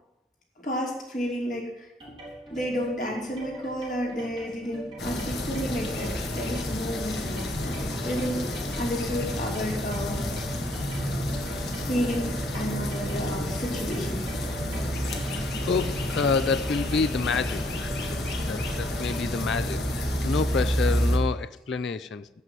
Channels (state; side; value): normal; both; correlation 0.68